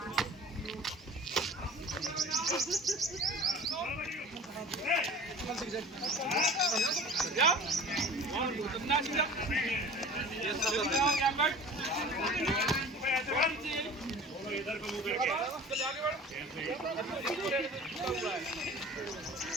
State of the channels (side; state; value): both; normal; correlation 0.41